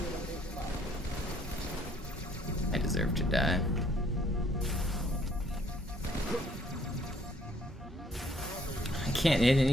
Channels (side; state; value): both; normal; correlation 0.64